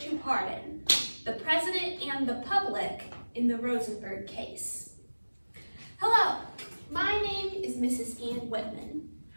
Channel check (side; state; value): both; inverted; correlation -1.00